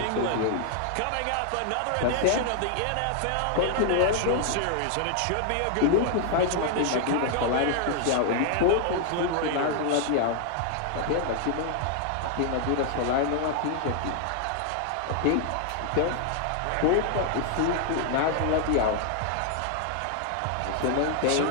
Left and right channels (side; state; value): both; different; correlation 0.00